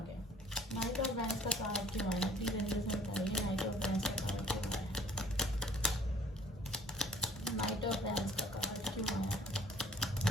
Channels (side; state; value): both; normal; correlation 0.55